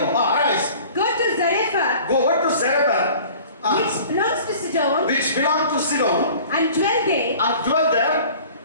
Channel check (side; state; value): both; inverted; correlation -0.46